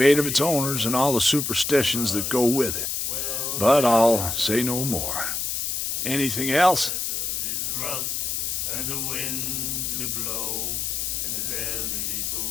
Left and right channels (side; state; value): left; noise; hiss, 1 dB below the sound